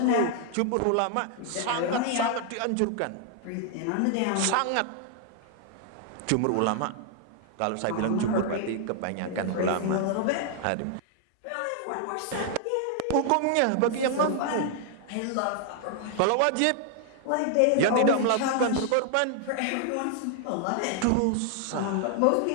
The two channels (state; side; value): different; both; correlation 0.00